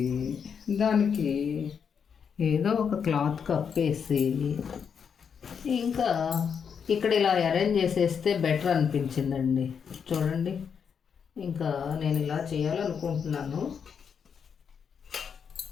దానికి ఏదో ఒక క్లాత్ కప్పేసి ఇంకా ఇక్కడ ఇలా అరేంజ్ చేసేస్తే బెటర్ అనిపించిందండి. చూడండి, ఇంకా నేను ఇలా చేయాలనుకుంటున్నాను.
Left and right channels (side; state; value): right; quieter; 6.9 dB